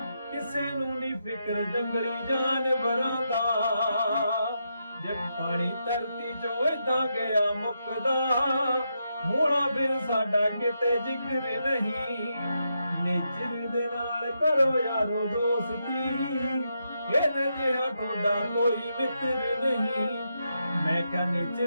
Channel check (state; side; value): inverted; both; correlation -0.83